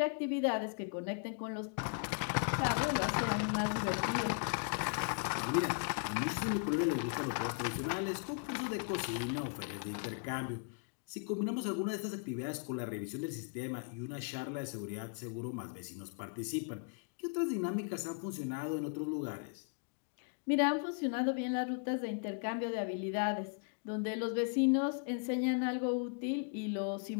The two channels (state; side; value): quieter; right; 38.0 dB